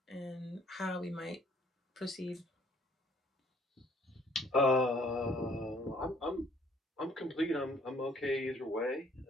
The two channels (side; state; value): both; normal; correlation 0.61